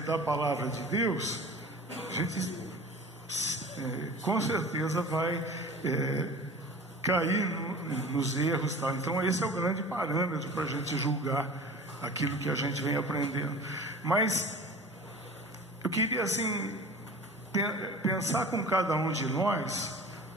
palavra de Deus, a gente com certeza vai cair nos erros, tá? Então esse é o grande parâmetro para a gente julgar aquilo que a gente vem aprendendo. Mas eu queria assim pensar com cada um de nós,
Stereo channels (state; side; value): normal; both; correlation 0.40